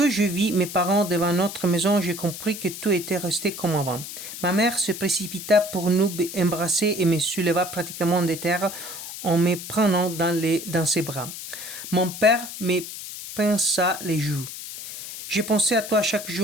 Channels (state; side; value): noise; left; hiss, 10 dB below the sound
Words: je vis mes parents devant notre maison, j'ai compris que tout était resté comme avant. Ma mère se précipita pour nous embrasser et me souleva pratiquement de terre en me prenant dans ses bras. Mon père me pinça les joues. « J'ai pensé à toi chaque